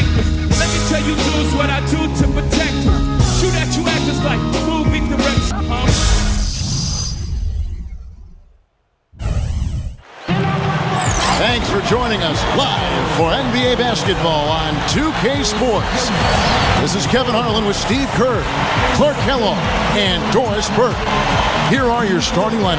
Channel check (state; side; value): identical; both; correlation 1.00